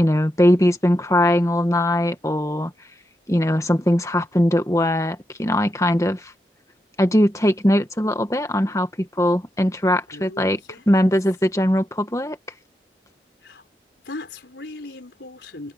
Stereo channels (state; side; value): normal; both; correlation 0.85